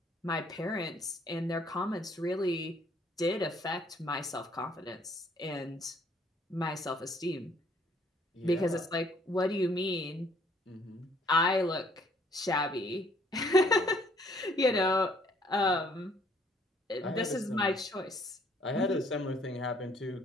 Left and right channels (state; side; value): normal; both; correlation 0.63